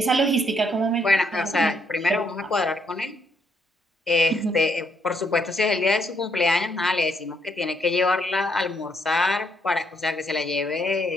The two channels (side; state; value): both; normal; correlation 0.73